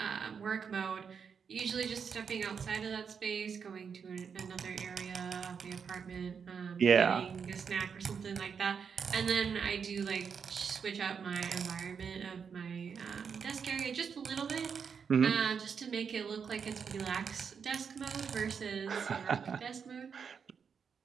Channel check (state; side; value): quieter; left; 6.5 dB